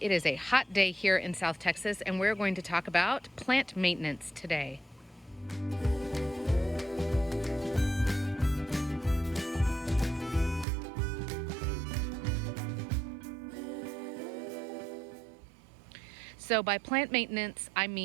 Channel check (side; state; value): left; drops out; at 10.7 s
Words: It is a hot day here in South Texas and we're going to talk about plant maintenance today. So by plant maintenance, I